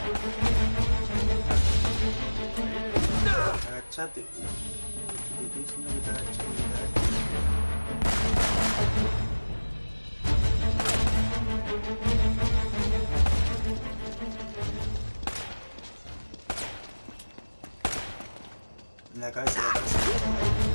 Agachate. Te estoy diciendo que te agaches. En la cabeza de la cabeza.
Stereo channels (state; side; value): inverted; both; correlation -1.00